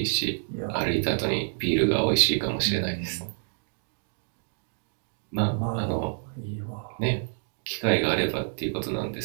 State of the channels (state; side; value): silent; left; 55 dB below the other